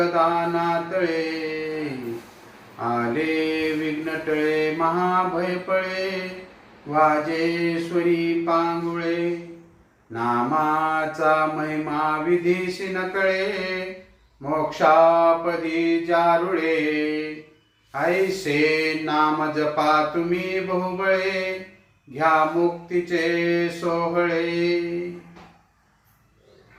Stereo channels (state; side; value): identical; both; correlation 1.00